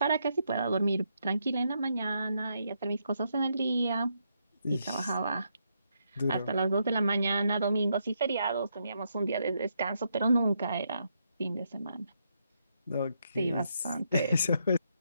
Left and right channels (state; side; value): inverted; both; correlation -0.79